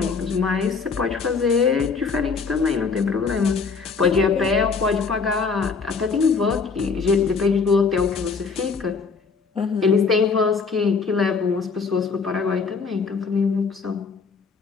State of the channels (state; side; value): quieter; right; 5.1 dB